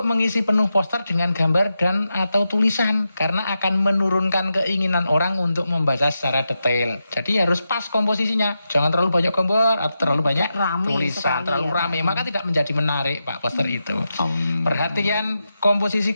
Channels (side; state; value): both; inverted; correlation -0.88